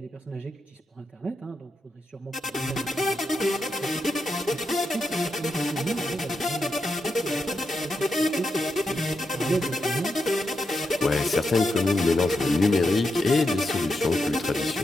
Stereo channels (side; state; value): both; normal; correlation 0.85